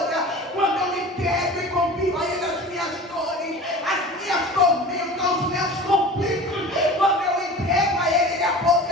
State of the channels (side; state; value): both; normal; correlation 0.38